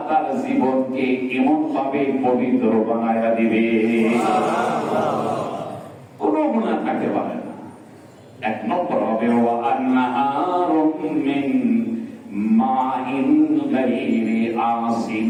তার জীবনকে এমন ভাবে পবিত্র বানায়া দিবে, কোনো গুনাহ থাকতে পারে না। 1 নম্বর হবে ওয়া আনহারুম মিন মাইন গায়রি আসিন,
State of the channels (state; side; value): identical; both; correlation 1.00